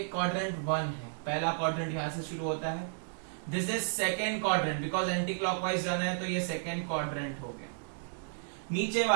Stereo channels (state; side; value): silent; left; digital silence